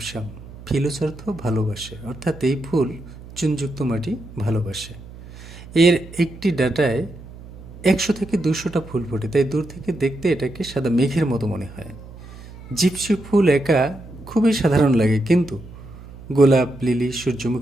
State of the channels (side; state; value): right; noise; hum, 17 dB below the sound